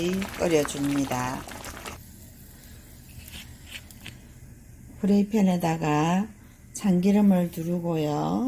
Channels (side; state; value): both; identical; correlation 1.00